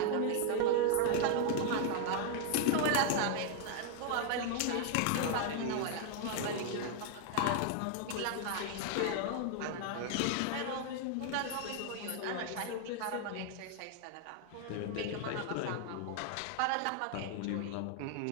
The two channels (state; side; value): different; both; correlation 0.00